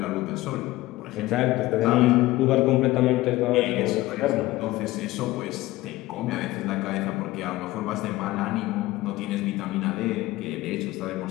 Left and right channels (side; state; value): right; quieter; 18.0 dB